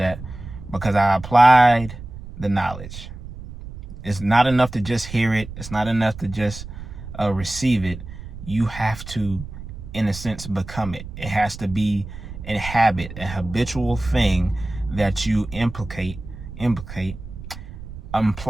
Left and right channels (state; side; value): noise; right; rumble, 12 dB below the sound